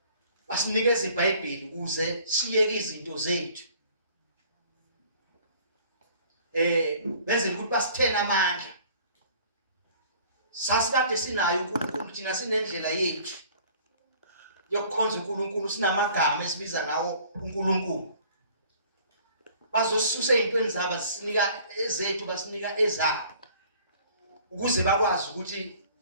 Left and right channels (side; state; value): both; inverted; correlation -0.53